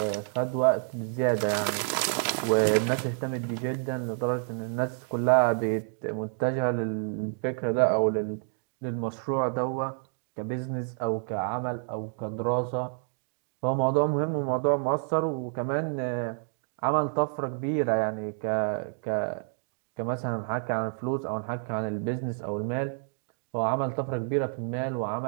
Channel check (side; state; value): left; silent; 59 dB below the other